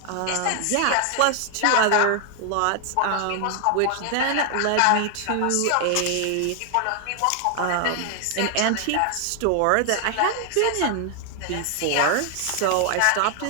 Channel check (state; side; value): different; both; correlation 0.00